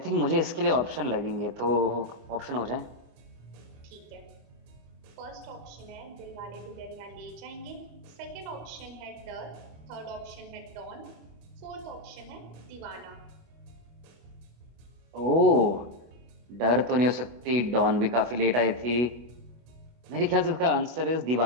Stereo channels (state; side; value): late; left; 24 ms